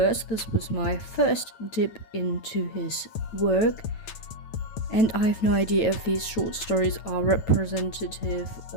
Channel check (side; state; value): right; late; 9.2 ms